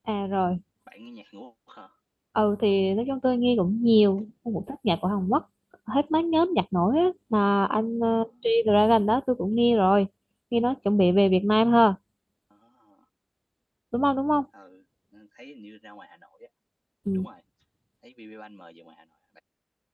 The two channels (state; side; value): identical; both; correlation 1.00